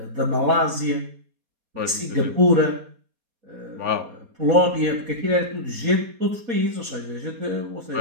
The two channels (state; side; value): late; left; 4.2 ms